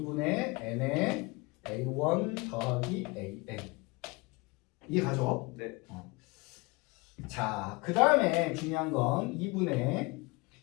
n의 A1 더하기 AN. 이해가죠? 네. 자, 그 다음에 중요한 건 2분의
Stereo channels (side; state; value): right; quieter; 25.6 dB